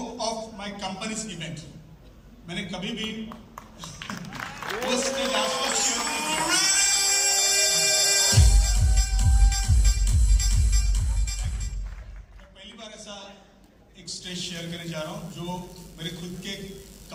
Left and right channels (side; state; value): both; identical; correlation 1.00